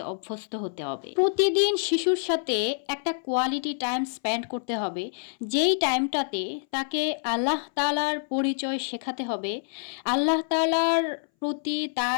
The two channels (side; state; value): right; silent; 60 dB below the other